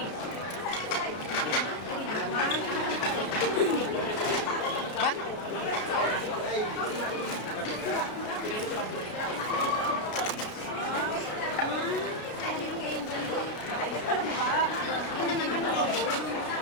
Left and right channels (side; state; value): right; late; 33 ms